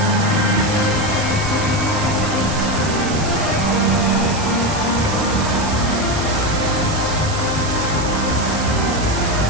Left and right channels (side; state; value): right; noise; hiss, 10 dB below the sound